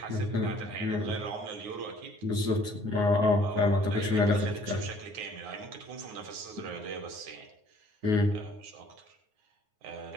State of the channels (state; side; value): late; left; 9.6 ms